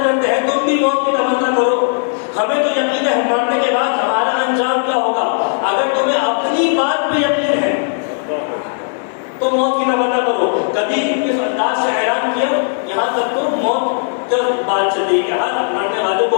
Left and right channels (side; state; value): right; silent; digital silence